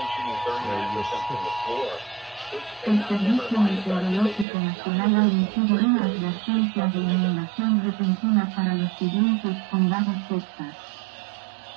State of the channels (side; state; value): left; drops out; at 4.5 s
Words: shooting 39% from the floor, Este servicio meteorológico nacional ha emitido una advertencia de inundación repentina para los siguientes condados Texas: